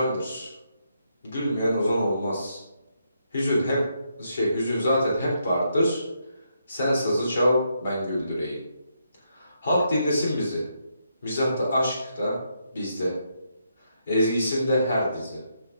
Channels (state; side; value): inverted; both; correlation -0.78